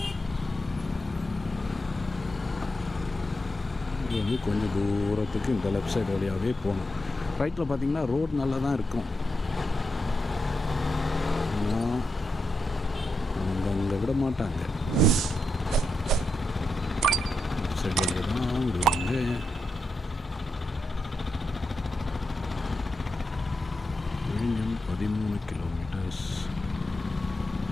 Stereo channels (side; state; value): both; normal; correlation 0.86